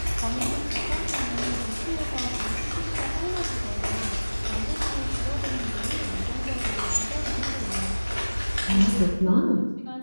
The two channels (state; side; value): inverted; both; correlation -1.00